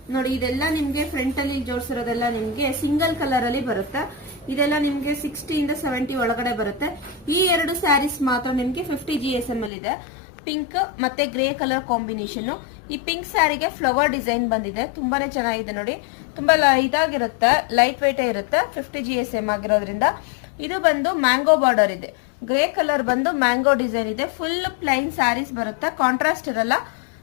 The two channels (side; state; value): right; drops out; at 9.7 s